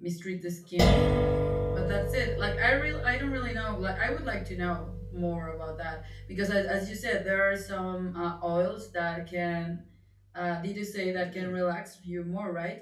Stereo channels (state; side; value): identical; both; correlation 1.00